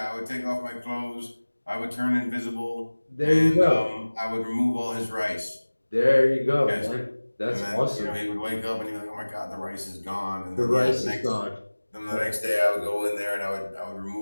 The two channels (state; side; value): inverted; both; correlation -1.00